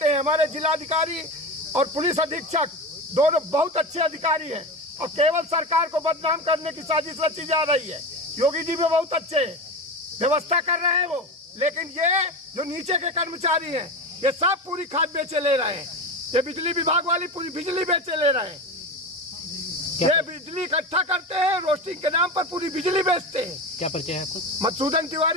हैं, हमारे जिलाधिकारी और पुलिस अधीक्षक दोनों बहुत अच्छे अधिकारी हैं, और केवल सरकार को बदनाम करने की साजिश रची जा रही है। योगी जी भी बहुत अच्छे हैं, व्यवस्था कर रहे हैं वो, लेकिन ये जो नीचे के कर्मचारी हैं, ये सब पूरी खाद बेचे ले रहे हैं। ये बिजली विभाग वाली पूरी बिजली बेचे ले रहे हैं। ये बिजली इकट्ठा करते हैं, रोस्टिंग के नाम पर पूरी बिजली बेचते हैं। क्या परिचय है आपको? मधुसूदन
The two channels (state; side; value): normal; both; correlation 0.23